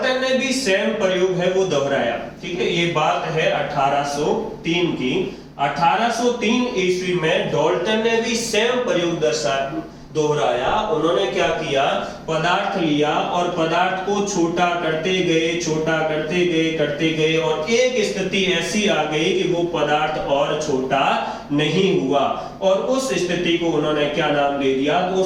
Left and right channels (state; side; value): identical; both; correlation 1.00